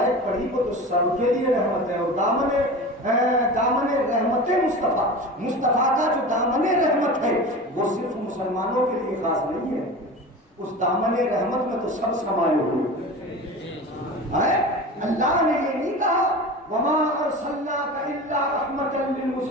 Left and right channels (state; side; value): normal; both; correlation 0.32